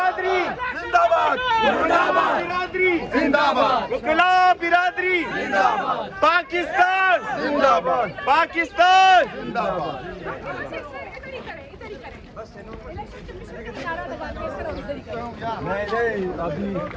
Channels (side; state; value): both; identical; correlation 1.00